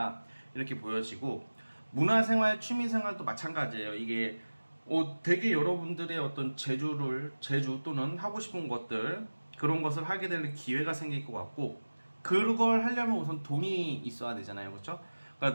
이렇게 보여지고, 문화생활, 취미생활도 마찬가지예요. 이게 되게 여러분들의 어떤 재주 또는 하고 싶은 것들, 그런 것을 하게 될 기회가 생길 것 같고, 그걸 하려면 우선 돈이 있어야 되잖아요. 그렇죠?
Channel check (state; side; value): inverted; both; correlation -1.00